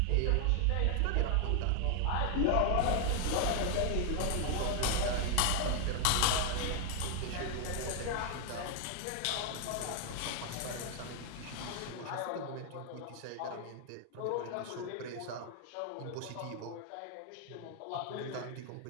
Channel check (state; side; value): different; both; correlation 0.00